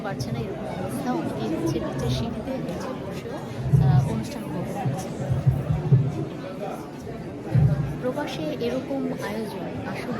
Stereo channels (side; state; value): both; identical; correlation 1.00